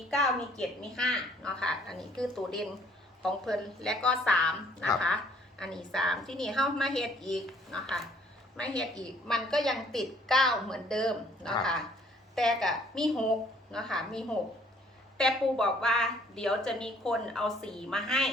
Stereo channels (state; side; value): normal; both; correlation 0.61